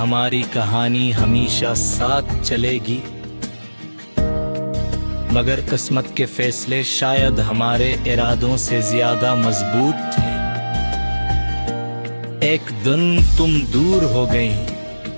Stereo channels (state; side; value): inverted; both; correlation -1.00